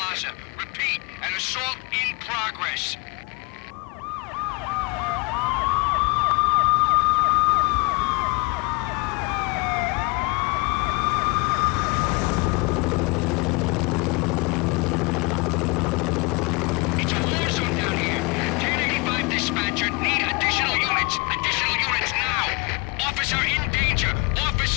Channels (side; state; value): right; quieter; 28.9 dB